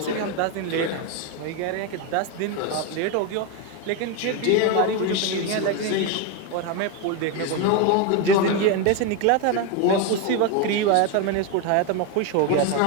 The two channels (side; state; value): both; different; correlation 0.02